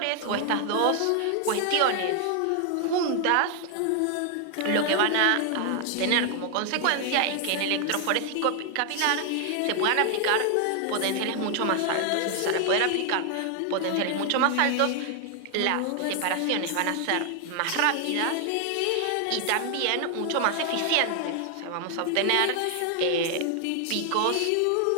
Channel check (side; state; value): both; different; correlation 0.00